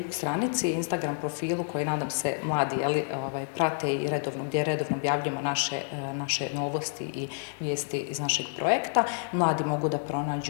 stranici i Instagram profilu koji nadam se mladi prate i gdje redovno objavljujemo naše novosti i vijesti iz našeg projekta, mladi mogu da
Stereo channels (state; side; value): silent; right; 59 dB below the other